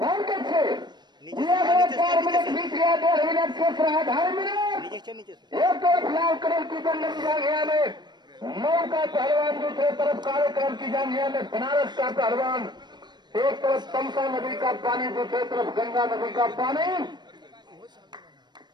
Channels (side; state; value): left; late; 0.21 ms